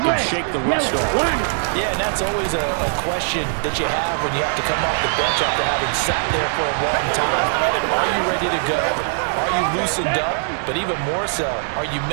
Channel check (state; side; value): silent; left; digital silence